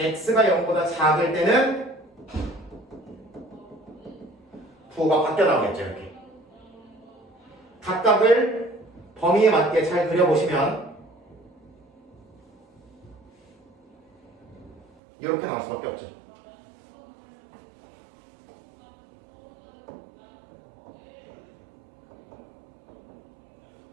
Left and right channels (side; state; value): left; drops out; at 14.9 s